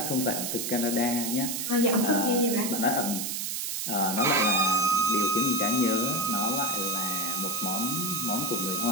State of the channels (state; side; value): noise; right; hiss, 2 dB below the sound